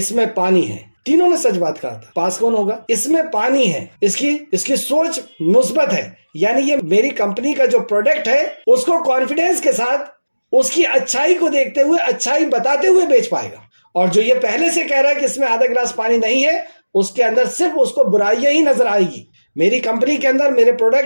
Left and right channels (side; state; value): both; inverted; correlation -1.00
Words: میں پانی ہے. تینوں نے سچ بات کہا تھا. پاس کون ہوگا؟ اس میں پانی ہے. اس کی سوچ مثبت ہے، یعنی یہ میری کمپنی کا جو پروڈکٹ ہے اس کو کانفیڈنس کے ساتھ، اس کی اچھائی کو دیکھتے ہوئے، اچھائی بتاتے ہوئے بیچ پائے گا. اور جو یہ پہلے سے کہہ رہا ہے کہ اس میں آدھا گلاس پانی نہیں ہے، اس کے اندر صرف اس کو برائیاں ہی نظر آئے گی. میری کمپنی کے اندر، میرے